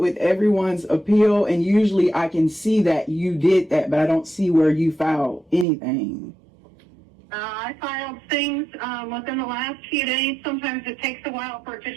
everyone's appeal, and usually I can see that you did that, but I don't see where you filed anything. I filed things within the last few days. Sometimes it takes a while for it to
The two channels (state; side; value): drops out; left; at 5.7 s